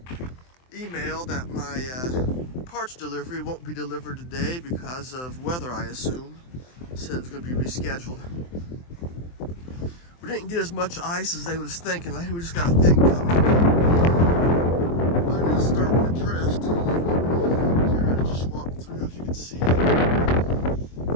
email that my parts delivery won't be delivered today because of weather, I assume. Said it's going to be rescheduled. We didn't get as much ice as they was thinking. I think we just got a thin coat. But it is starting to drift. Here, I just walked through, as you can see.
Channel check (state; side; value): late; right; 23 ms